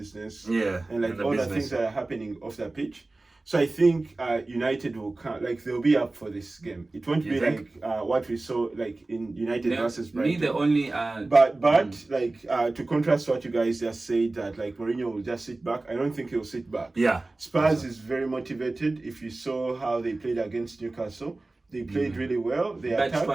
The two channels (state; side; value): quieter; left; 3.1 dB